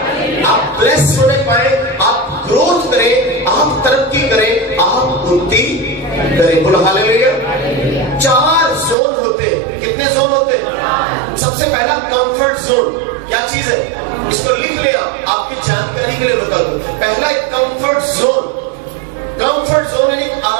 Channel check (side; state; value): left; drops out; at 9.0 s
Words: आप ब्लेस होने पाए, आप ग्रोथ करें, आप तरक्की करें, आप उन्नति करें। बोलो हालेलुया। 4 जोन होते हैं। कितने जोन होते हैं? सबसे पहला कंफर्ट जोन क्या चीज है? इसको लिख लिया, आपकी जानकारी के लिए बता दूं। पहला है कंफर्ट जोन। कंफर्ट जोन यानी